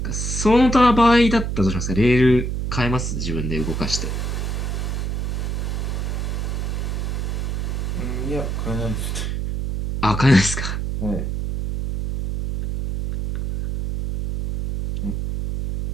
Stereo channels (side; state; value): right; noise; hum, 2 dB below the sound